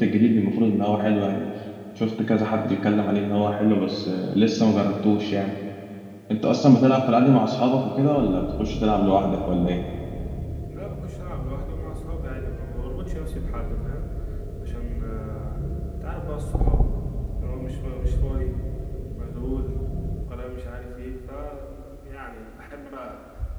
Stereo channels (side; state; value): both; identical; correlation 1.00